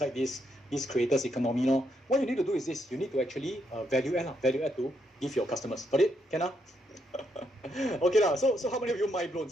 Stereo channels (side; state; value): both; normal; correlation 0.77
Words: this creators economy. What you need to do is this. You need to actually value add to give your customers. Got it? Can Okay So how many of you mind blown?